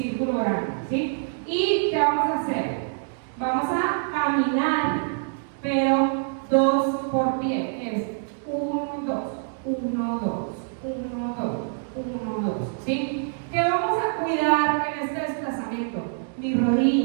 grande, ¿sí? ¿Y qué vamos a hacer? Vamos a caminar, pero 2 por pie. Es 1, 2, 1, 2, 1, 2, 1, 2, ¿sí? ¿Qué vamos a cuidar en este desplazamiento? Mis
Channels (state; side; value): silent; left; digital silence